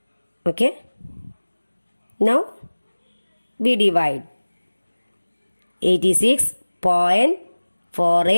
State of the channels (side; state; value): both; inverted; correlation -1.00